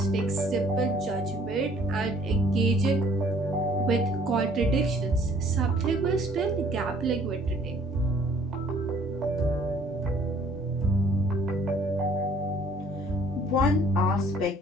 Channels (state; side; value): normal; both; correlation 0.58